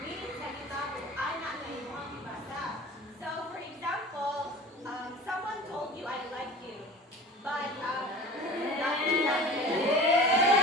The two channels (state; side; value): normal; both; correlation 0.37